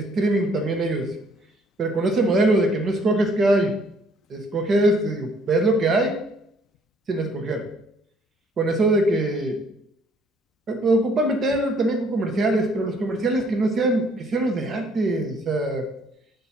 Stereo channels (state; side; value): normal; both; correlation 0.63